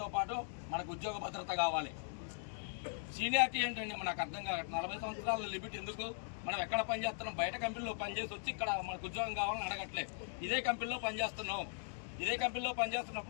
పాటు మనకు ఉద్యోగ భద్రత కావాలి. సీనియారిటీ ఏంటండి నాకు అర్థం కావట్లేదు. 40 సంవత్సరాల లిమిట్ ఎందుకు? మనం ఎక్కడ పనిచేస్తున్నాం? బయట కంపెనీలో పనిచేసి వచ్చి ఇక్కడ మనకు ఉద్యోగం కావాలని అడగట్లే. ఇదే కంపెనీలో పనిచేస్తున్నాం. ఇదే కంపెనీలో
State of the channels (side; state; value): right; silent; digital silence